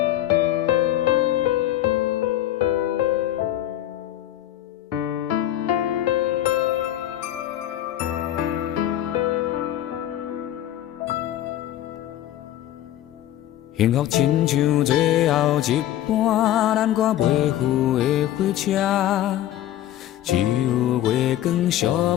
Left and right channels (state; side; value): quieter; right; 12.8 dB